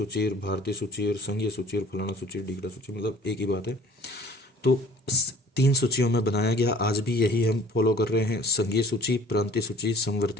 भारतीय सूची और संघीय सूची और फलाना सूची, ढीकड़ा सूची, मतलब एक ही बात है। तो 3 सूचियों में बनाया गया। आज भी यही हम फॉलो कर रहे हैं, संघीय सूची, प्रांतीय सूची,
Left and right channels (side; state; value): both; normal; correlation 0.49